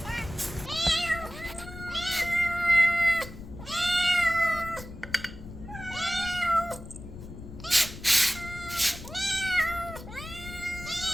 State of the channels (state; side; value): noise; left; rumble, 13 dB below the sound